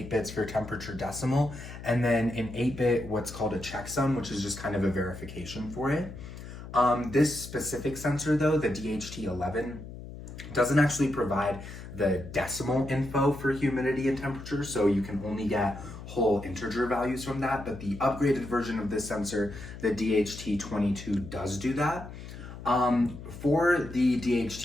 bits for temperature decimal, and then an 8-bit what's called a checksum, which is just kind of a verification for it. This specific sensor though, the DHT11, doesn't actually provide the decimal info for humidity and temperature, so you can only get whole integer values from that, but the upgraded version of this sensor, the DHT22, does do that. For the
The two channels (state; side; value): noise; left; hum, 12 dB below the sound